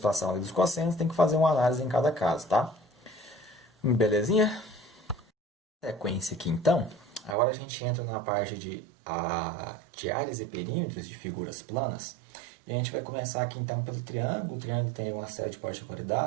a lei dos cossenos, tem que fazer uma análise em cada caso, tá? Belezinha? Sequência aqui, então. Agora a gente entra na parte de áreas e perímetros de figuras planas. E a gente vai começar aqui então pelo triângulo. O triângulo tem uma série de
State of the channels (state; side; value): drops out; left; at 7.4 s